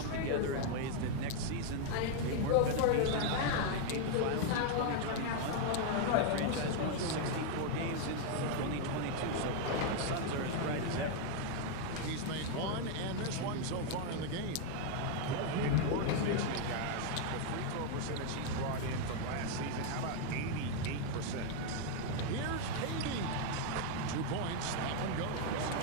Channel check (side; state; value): both; different; correlation 0.00